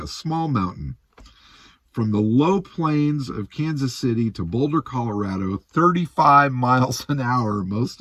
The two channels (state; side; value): identical; both; correlation 1.00